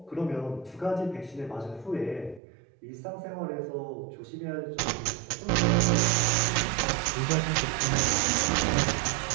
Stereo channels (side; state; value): left; drops out; at 2.4 s